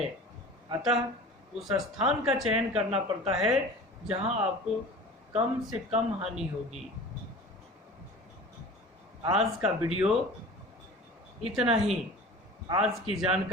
अतः उस स्थान का चयन करना पड़ता है जहां आपको कम से कम हानि होगी। आज का वीडियो इतना ही। आज की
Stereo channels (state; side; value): normal; both; correlation 0.39